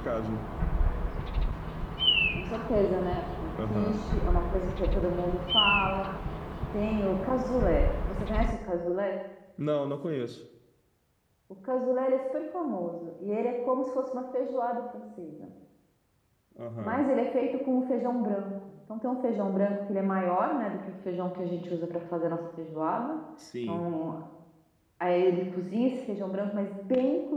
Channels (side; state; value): both; identical; correlation 1.00